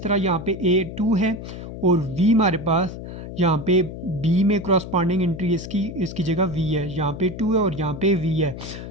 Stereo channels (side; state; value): left; noise; hum, 10 dB below the sound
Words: तरह यहाँ पे a 2 है और v हमारे पास यहाँ पे b में क्रॉसपॉन्डिंग एंट्री इसकी जगह v है, यहाँ पे 2 है और यहाँ पे v है,